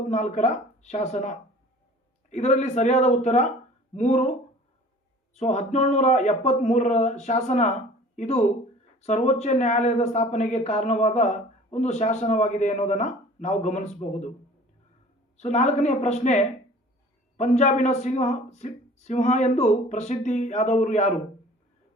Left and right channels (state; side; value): normal; both; correlation 0.47